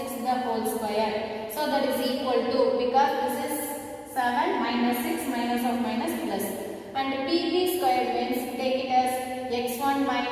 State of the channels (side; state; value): both; identical; correlation 1.00